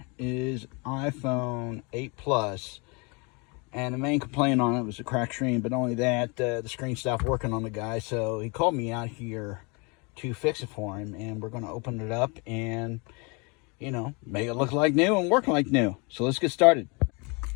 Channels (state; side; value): quieter; right; 30.8 dB